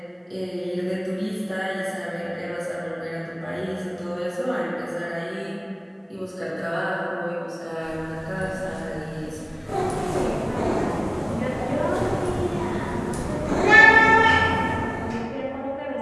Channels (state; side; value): identical; both; correlation 1.00